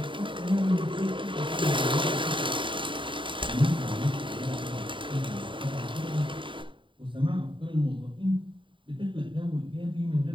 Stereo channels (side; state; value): left; late; 0.24 ms